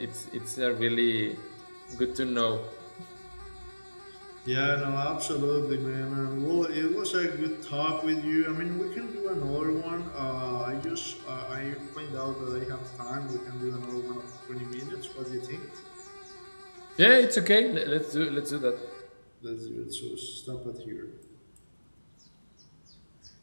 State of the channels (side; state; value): both; inverted; correlation -1.00